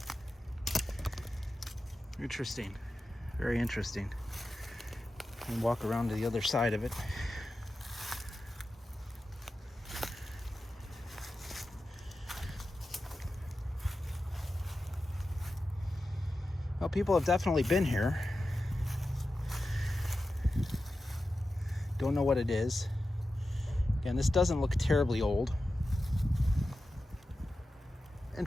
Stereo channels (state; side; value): normal; both; correlation 0.92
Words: Interesting. Very interesting. And walk around to the other side of it. Well, people have definitely been here. Don't know what it is. Again, this doesn't look terribly old.